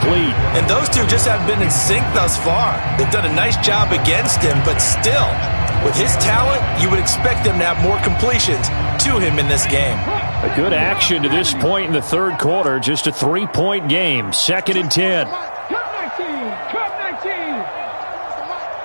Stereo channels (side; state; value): both; inverted; correlation -1.00